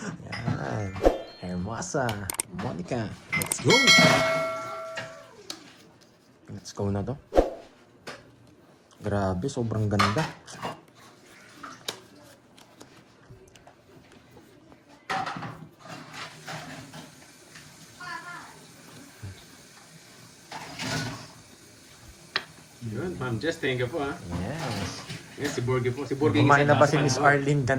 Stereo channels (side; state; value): both; identical; correlation 1.00